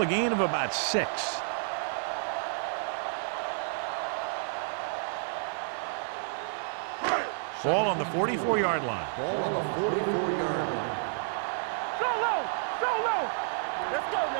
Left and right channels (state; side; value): silent; left; digital silence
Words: gain of about 6. Ball on the 44-yard line. Ball on the 44-yard line. So low. Let's go